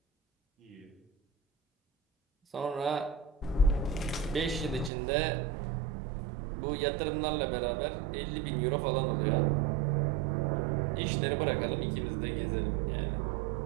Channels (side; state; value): left; drops out; at 4.9 s